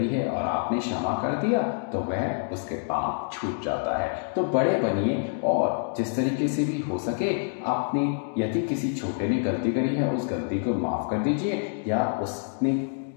है और आपने क्षमा कर दिया तो वह उसके पाप छूट जाता है। तो बड़े बनिए और जिस तरीके से भी हो सके अपनी, यदि किसी छोटे ने गलती करी है उस गलती को माफ कर दीजिए, या उसने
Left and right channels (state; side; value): silent; right; digital silence